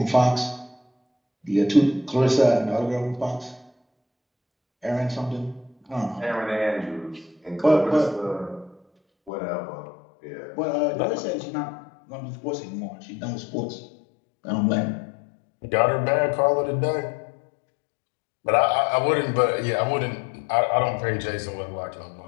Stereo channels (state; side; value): drops out; right; at 9.3 s